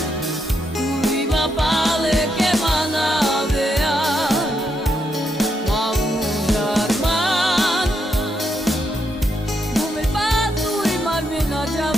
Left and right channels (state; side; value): normal; both; correlation 0.80